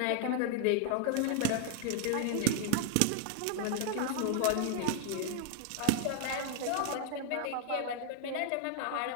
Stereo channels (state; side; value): different; both; correlation 0.00